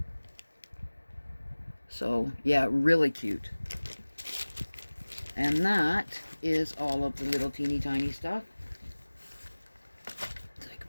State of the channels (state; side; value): inverted; both; correlation -1.00